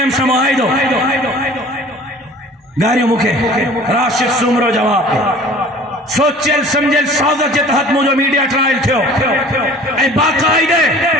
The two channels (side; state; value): both; normal; correlation 0.46